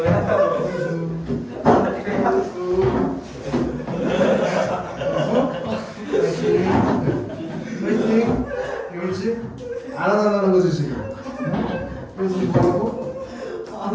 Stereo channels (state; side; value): identical; both; correlation 1.00